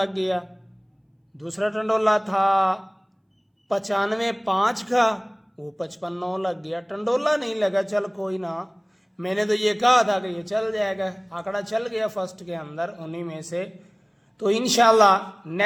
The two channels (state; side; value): identical; both; correlation 1.00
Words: गया। दूसरा टंडोला था 95.5 का, वो 55.9 लग गया। टंडोला नहीं लगा, चल कोई ना, मैंने तो ये कहा था कि ये चल जाएगा। आंकड़ा चल गया फर्स्ट के अंदर, उन्हीं में से। तो इंशाल्लाह